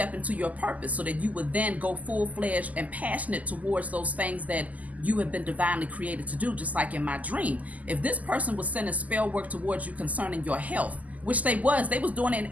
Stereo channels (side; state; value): left; late; 0.077 ms